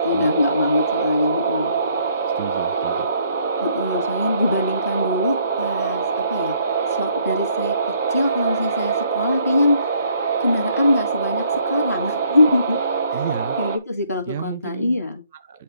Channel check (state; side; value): inverted; both; correlation -0.66